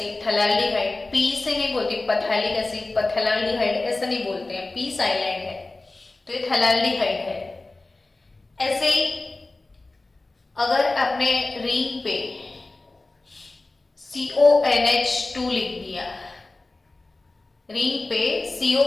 थैलाल्डिहाइड P से नहीं बोलते, पथैलिक एसिड पथैलाल्डिहाइड ऐसा नहीं बोलते हैं, P साइलेंट है, तो ये थैलाल्डिहाइड है। ऐसे ही अगर आपने रिंग पे CONH2 लिख दिया, रिंग पे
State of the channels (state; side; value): quieter; right; 3.2 dB